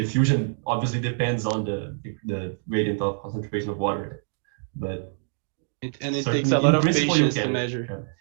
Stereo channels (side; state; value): left; silent; digital silence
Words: obviously depends on the gradient of concentration of water. But it takes a lot of patience to measure.